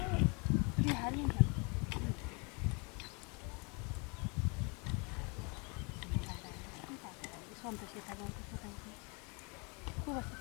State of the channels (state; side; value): quieter; right; 31.9 dB